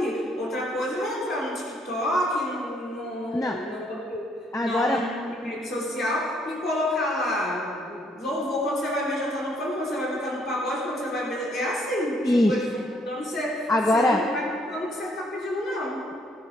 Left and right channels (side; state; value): both; normal; correlation 0.68